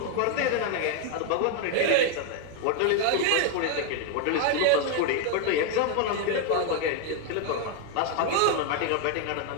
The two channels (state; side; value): different; both; correlation 0.00